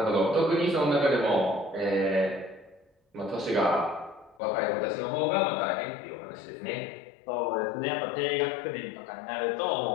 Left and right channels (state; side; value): drops out; right; at 4.4 s